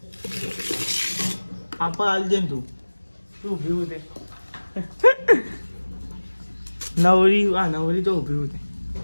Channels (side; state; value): both; inverted; correlation -1.00